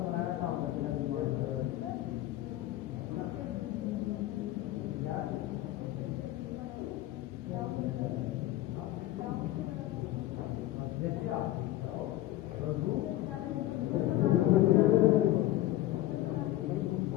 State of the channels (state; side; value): quieter; right; 15.4 dB